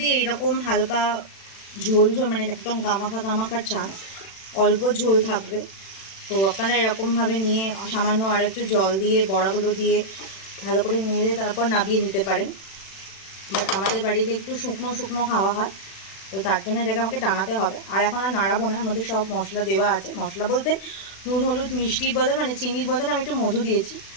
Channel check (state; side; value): late; right; 36 ms